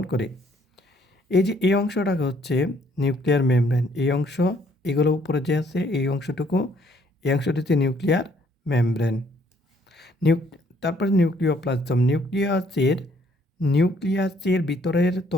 করে। এই যে এই অংশটা হচ্ছে নিউক্লিয়ার মেমব্রেন। এই অংশ, এগুলো উপরে যে আছে এই অংশটুকু, এই অংশটি হচ্ছে নিউক্লিয়ার মেমব্রেন। তারপরে নিউক্লিওপ্লাজম। নিউক্লিয়াসের ভিতরের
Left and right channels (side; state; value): both; normal; correlation 0.65